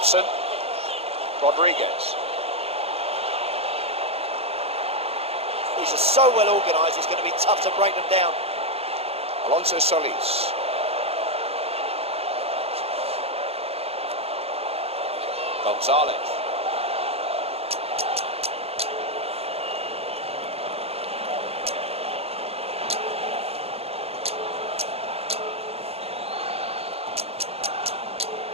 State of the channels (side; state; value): left; late; 0.29 ms